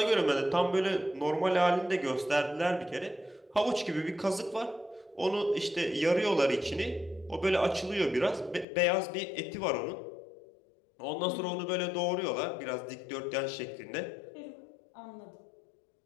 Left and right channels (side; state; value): right; drops out; at 8.7 s